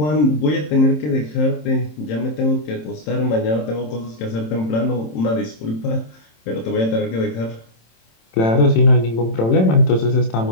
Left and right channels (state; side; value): late; right; 27 ms